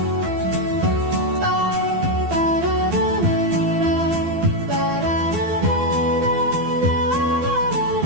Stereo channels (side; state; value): left; late; 12 ms